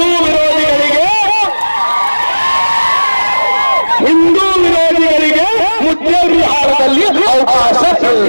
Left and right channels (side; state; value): both; inverted; correlation -1.00